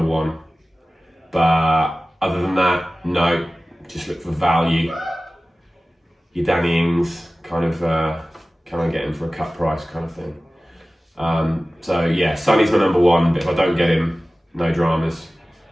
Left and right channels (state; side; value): normal; both; correlation 0.97